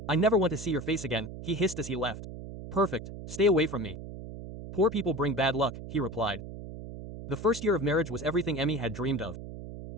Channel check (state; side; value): noise; right; hum, 11 dB below the sound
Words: I never want to see your face again, he hissed as he left. Perfect, stay away from me. Poor people bring bad luck, he replied. The first year of marriage was everything 𝐀𝐻𝐫 had dreamed of.